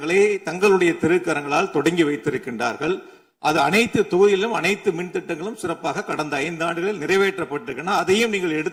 தங்களுடைய திருக்கரங்களால் தொடங்கி வைத்திருக்கின்றார்கள். அது அனைத்து தொகுதியிலும் அனைத்து மின் திட்டங்களும் சிறப்பாக கடந்த 5 ஆண்டுகளில் நிறைவேற்றப்பட்டிருக்கின்றன. அதையும் நீங்கள்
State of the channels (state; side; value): identical; both; correlation 1.00